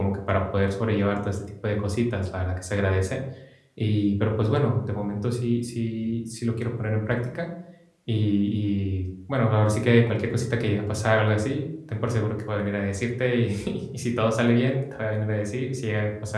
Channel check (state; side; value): identical; both; correlation 1.00